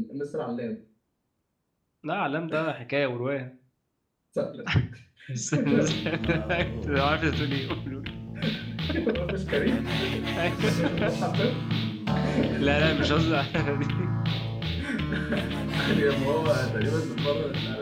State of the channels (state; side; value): identical; both; correlation 1.00